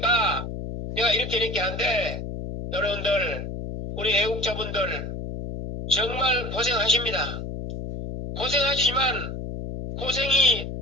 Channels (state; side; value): noise; left; hum, 7 dB below the sound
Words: 내가 이렇게 하는데, 여러분들, 우리 애국자분들, 정말 고생하십니다. 고생하시지만, 고생이